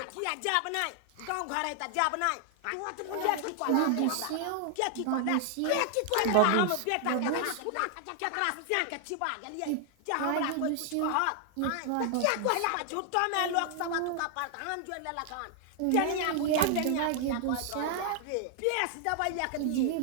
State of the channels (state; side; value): different; both; correlation 0.00